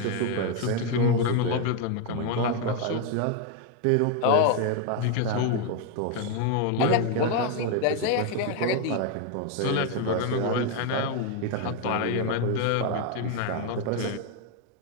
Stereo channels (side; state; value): both; different; correlation 0.01